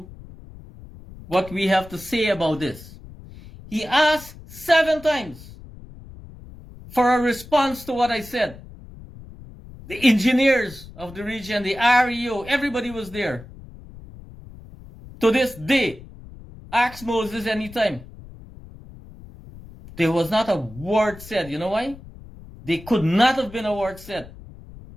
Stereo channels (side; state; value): left; noise; rumble, 18 dB below the sound